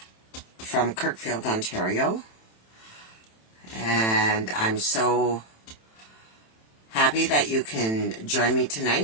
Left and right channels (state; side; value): late; right; 27 ms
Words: from Kirkfield, Ontario, and I'm so happy that you can join me